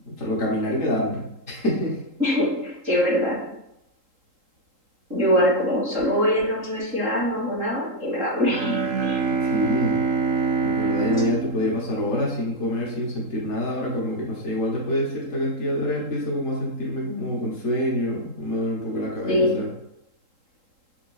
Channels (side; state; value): left; late; 3.8 ms